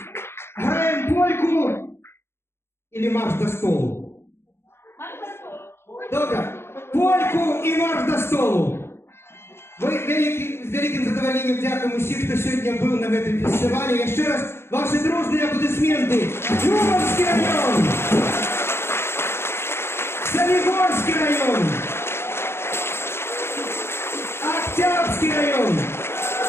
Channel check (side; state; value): right; late; 0.12 ms